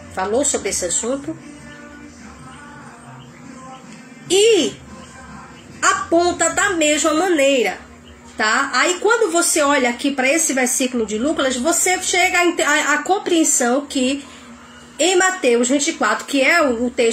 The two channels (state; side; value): identical; both; correlation 1.00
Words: Falou sobre esse assunto. E aponta da mesma maneira, tá? Aí quando você olha aqui para esse versículo de Lucas, você chega à compreensão que em Mateus 24, que é o